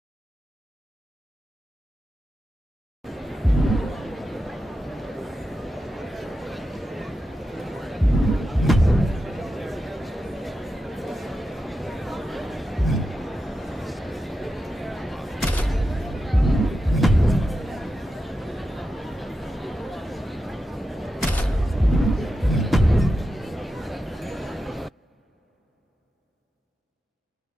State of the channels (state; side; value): normal; both; correlation 0.90